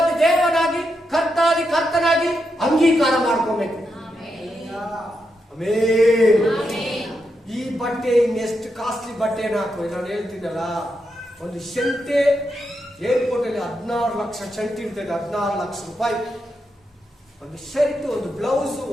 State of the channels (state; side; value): normal; both; correlation 0.84